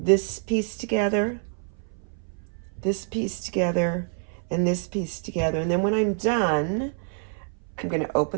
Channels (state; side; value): silent; left; 59 dB below the other